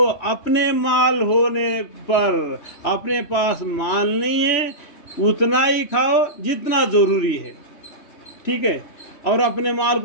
اپنے مال ہونے پر، اپنے پاس مال نہیں ہے اتنا ہی کھاؤ جتنا ضروری ہے، ٹھیک ہے؟ اور اپنے مال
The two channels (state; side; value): late; right; 3.1 ms